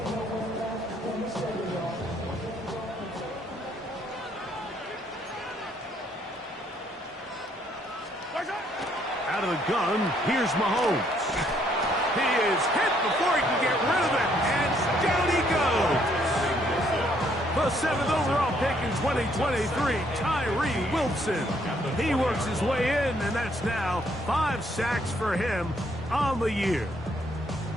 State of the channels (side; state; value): both; normal; correlation 0.68